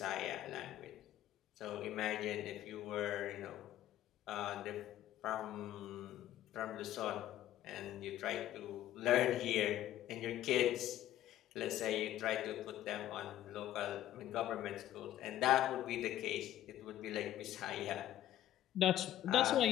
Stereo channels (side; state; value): right; quieter; 12.9 dB